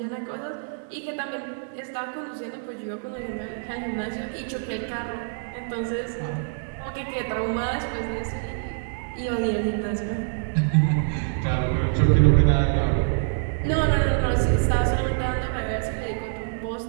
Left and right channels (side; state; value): left; silent; digital silence